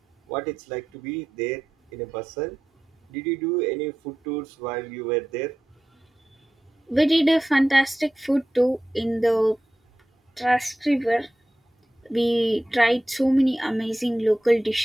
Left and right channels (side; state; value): both; normal; correlation 0.91